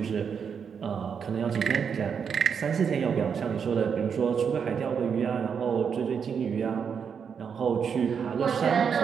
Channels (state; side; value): quieter; left; 6.8 dB